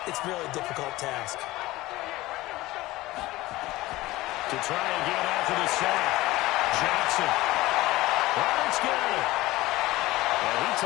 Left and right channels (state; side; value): quieter; right; 18.4 dB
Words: It's really a difficult task. To try again after the sack, Jackson. Roberts got it. And he